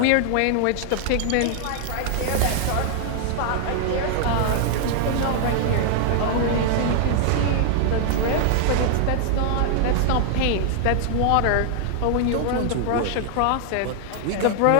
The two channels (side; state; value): both; different; correlation 0.00